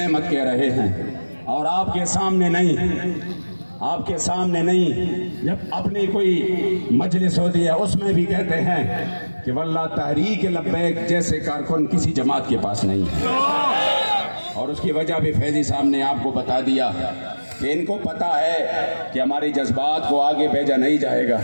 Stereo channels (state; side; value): inverted; both; correlation -1.00